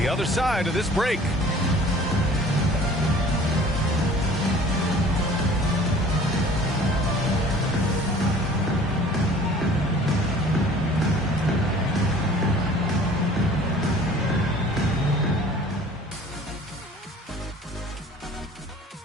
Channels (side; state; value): both; normal; correlation 0.48